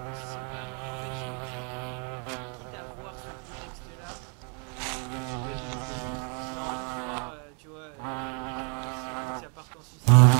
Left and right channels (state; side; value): quieter; left; 39.3 dB